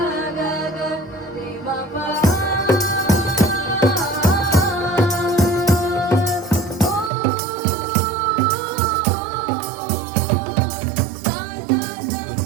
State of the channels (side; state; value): left; drops out; at 7.1 s